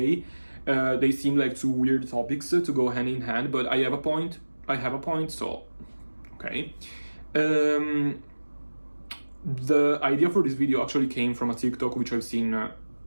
They seem like two weird topics to go hand in hand, but I have a point, so, okay. The idea for this video actually came from a TikTok which I've seen a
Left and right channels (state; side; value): inverted; both; correlation -1.00